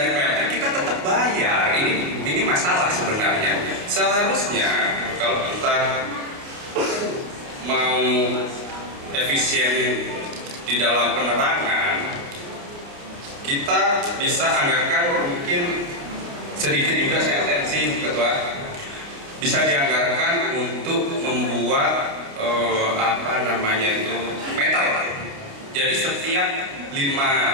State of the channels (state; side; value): late; left; 29 ms